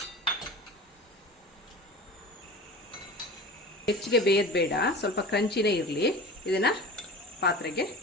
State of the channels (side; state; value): both; normal; correlation 0.35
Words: ಹೆಚ್ಚಿಗೆ ಬೇಯೋದು ಬೇಡ, ಸ್ವಲ್ಪ ಕ್ರಂಚಿನೇ ಇರಲಿ. ಇದನ್ನು ಪಾತ್ರೆಗೆ